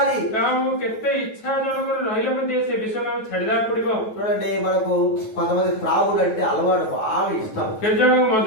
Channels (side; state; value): right; late; 9.2 ms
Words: କାହାକୁ କେତେ ଇଚ୍ଛା ଜଣଙ୍କର ରହିଲେ ମଧ୍ୟ ସେ ବିଷୟକୁ ଆମେ ଛାଡିଦେବାକୁ ପଡିବ। చూడండి, మనకు కొంతమంది త్రాగుడు అంటే అలవాటు బాగా ఇష్టం। କେତେ ଜଣଙ୍କୁ ମଦ